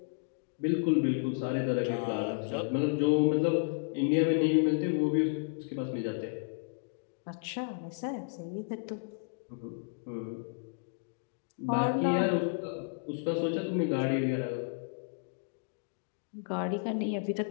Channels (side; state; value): right; silent; digital silence